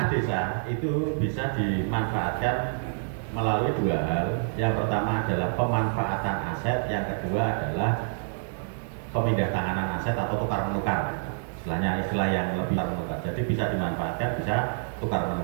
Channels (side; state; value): left; silent; digital silence